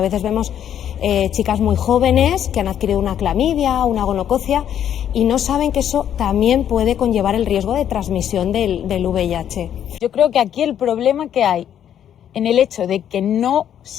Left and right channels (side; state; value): right; quieter; 9.9 dB